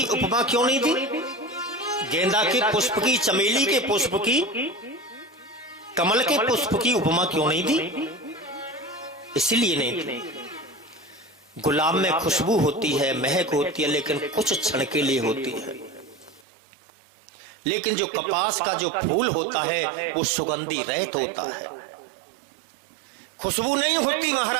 उपमा क्यों नहीं दी? गेंदा के पुष्प की, चमेली के पुष्प की, कमल के पुष्प की उपमा क्यों नहीं दी? इसलिए नहीं दी। गुलाब में खुशबू होती है, महक होती है, लेकिन कुछ क्षण के लिए होती है। लेकिन जो कपास का जो फूल होता है वो सुगंधी रहित होता है, खुशबू नहीं होती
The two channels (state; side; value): drops out; left; at 16.4 s